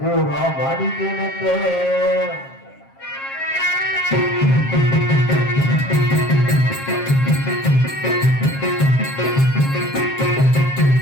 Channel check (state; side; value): late; right; 7.4 ms